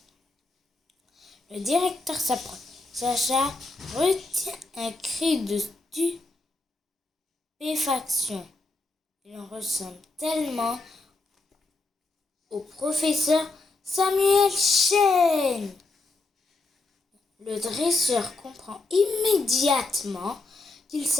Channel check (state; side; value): quieter; right; 3.3 dB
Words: Le directeur s'approche. Sacha retient un cri de stupéfaction. Il en ressemble tellement au professeur Samuel Chen. Le dresseur comprend immédiatement qu'il